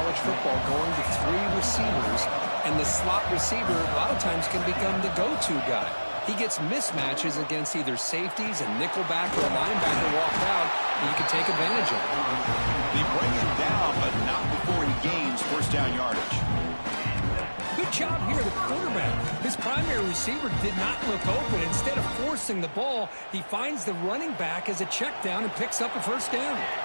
football going to 3 receivers, and the slot receiver a lot of times can become the go-to guy. He gets mismatches against either safeties, a nickelback, or a linebacker walked out, and you can take advantage of it. They bring him down, but not before he gains first down yardage. Good job here, the quarterback. His primary receiver did not look open. Instead of forcing the ball, he finds the running back as a check down and picks up a first down.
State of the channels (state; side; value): inverted; both; correlation -1.00